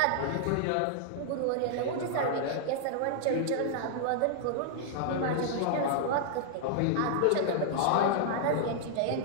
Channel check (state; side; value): different; both; correlation -0.01